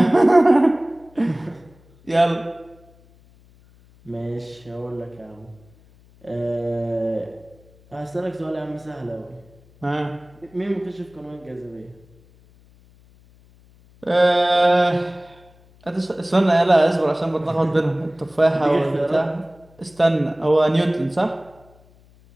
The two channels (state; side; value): noise; left; hum, 28 dB below the sound